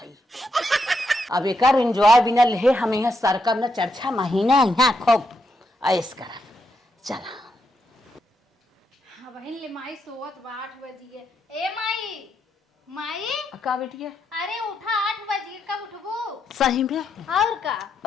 अब एक एंजॉय बिना ले हम यहाँ सरकम न चर्चा महीना यहाँ खूब ऐस कर चला। हाँ बहन ले माई सोवत बा 8 बजे। ए माई माई का बेटिया अरे उठा 8 बजे, कब उठबू? सही में? और का?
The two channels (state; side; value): normal; both; correlation 0.81